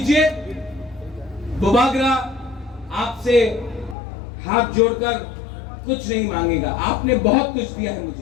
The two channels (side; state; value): right; drops out; at 4.0 s